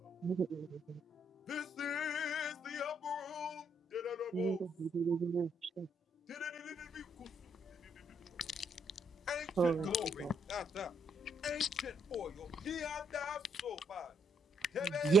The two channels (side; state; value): both; normal; correlation 0.73